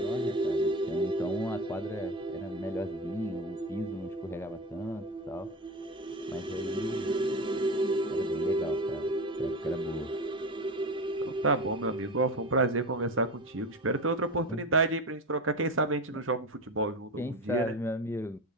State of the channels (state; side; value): normal; both; correlation 0.25